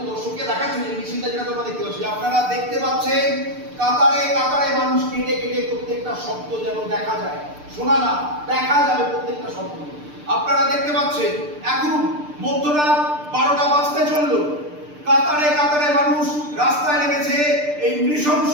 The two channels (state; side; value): late; left; 6.7 ms